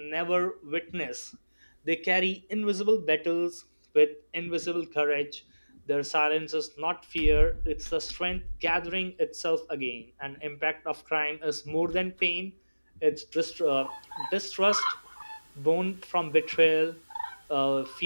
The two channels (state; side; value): inverted; both; correlation -1.00